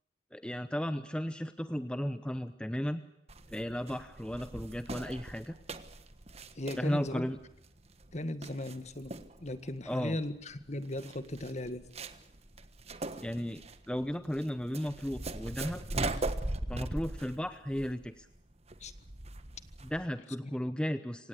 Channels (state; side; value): normal; both; correlation 0.85